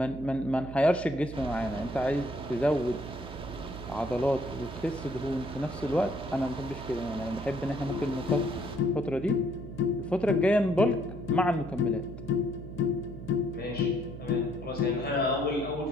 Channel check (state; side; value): noise; right; hum, 11 dB below the sound